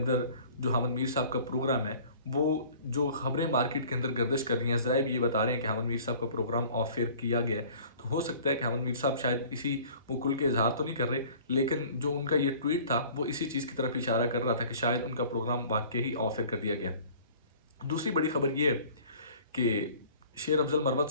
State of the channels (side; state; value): both; inverted; correlation -0.49